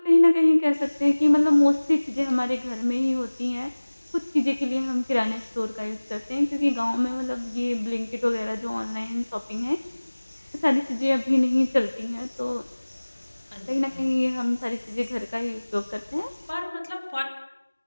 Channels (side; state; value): both; inverted; correlation -1.00